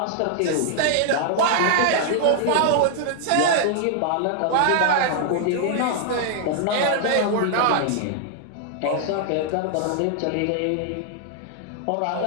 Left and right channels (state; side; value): different; both; correlation 0.00